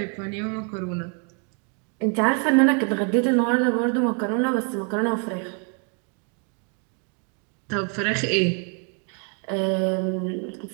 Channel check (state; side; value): quieter; left; 39.3 dB